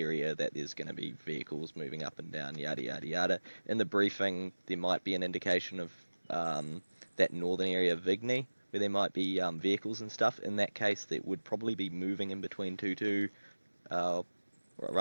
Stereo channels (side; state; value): both; inverted; correlation -1.00